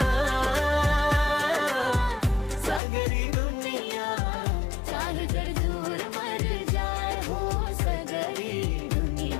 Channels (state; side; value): drops out; right; at 2.8 s